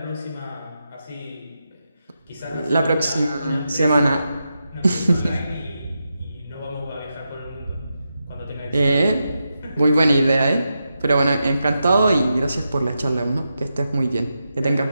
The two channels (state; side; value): inverted; both; correlation -0.87